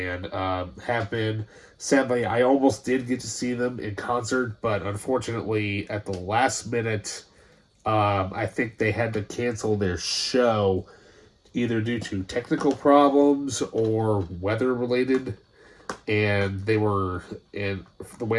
Have been. Sadly, I almost did get to see them in concert, but unfortunately, at the last minute, I think they had to cancel their show either due to technical problems or weather related. And and the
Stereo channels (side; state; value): both; identical; correlation 1.00